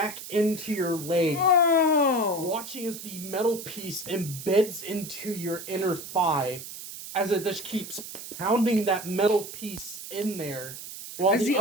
into your leg. Oh! Watching as the metal piece embeds into your inner thigh as it just keeps pounding that metal piece in there. While As the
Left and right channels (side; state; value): right; noise; hiss, 11 dB below the sound